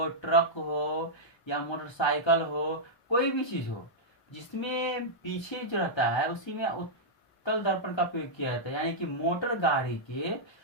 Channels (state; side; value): late; right; 1.3 ms